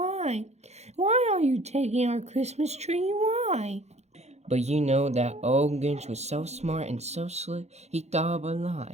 Why are you taking our Christmas tree? Why? But you know that old Grinch was so smart and so slick, he thought of a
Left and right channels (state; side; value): late; left; 0.32 ms